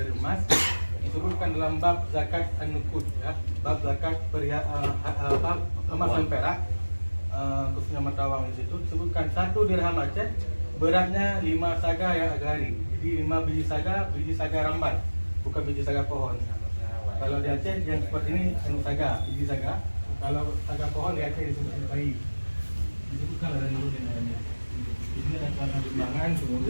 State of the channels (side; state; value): both; inverted; correlation -1.00